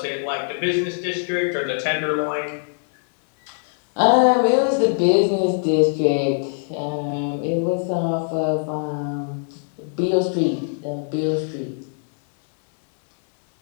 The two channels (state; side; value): silent; right; digital silence